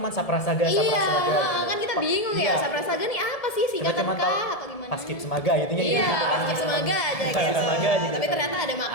Saprasaga, iya, Saprasaga. kan kita bingung ya, Iya. Saprasaga nih apa sih Kita singkatan cuma tahu kah atau gimana? Paskib Semaga gitu ya. Iya, Paskib Semaga aja Paskib gitu. Semaga aja gitu. Tapi ternyata ada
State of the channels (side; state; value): right; late; 1.7 ms